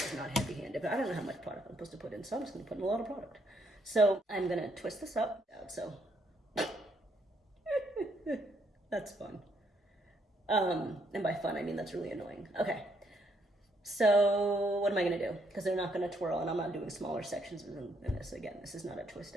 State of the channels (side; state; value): both; normal; correlation 0.73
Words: is not heavy-handed, but I don't know how much product I'm supposed to put in, so I'm just going to put in a lot of product. So I'm going to twist this up. So that's fun. And by fun, I mean that's really annoying. Okay. So what am I gonna do? Because they're not gonna twirl, and I'm not doing smaller sections than this. Again, this is not a twist